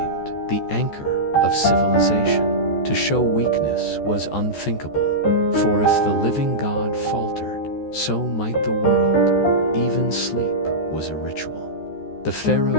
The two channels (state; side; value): late; right; 14 ms